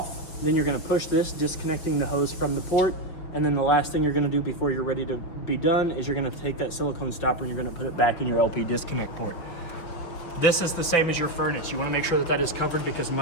then you're gonna push this, disconnecting the hose from the port, and then the last thing you're gonna do before you're ready to be done is you're gonna take that silicone stopper and you're gonna put it back in your LP disconnect port. This is the same as your furnace. You wanna make sure that that is covered because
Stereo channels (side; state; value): right; late; 5.7 ms